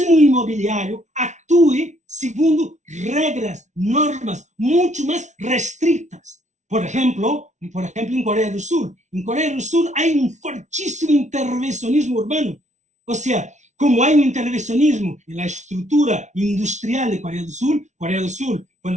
inmobiliario actúe según reglas, normas mucho más restrictas. Por ejemplo, en Corea del Sur. En Corea del Sur hay un fortísimo intervencionismo urbano. O sea, como hay un intervencionismo en la estructura industrial de Corea del Sur,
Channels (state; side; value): late; left; 0.34 ms